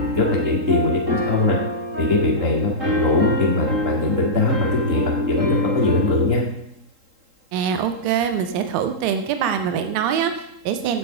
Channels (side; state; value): left; late; 3.7 ms